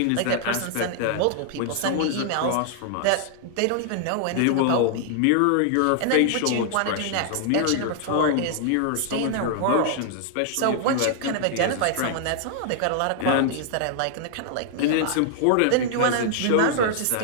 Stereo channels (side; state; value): both; different; correlation -0.01